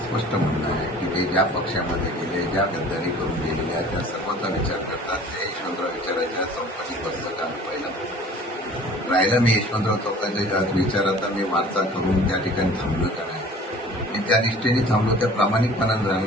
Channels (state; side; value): normal; both; correlation 0.47